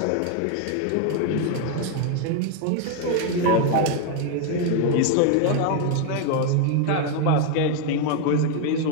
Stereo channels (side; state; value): both; different; correlation 0.01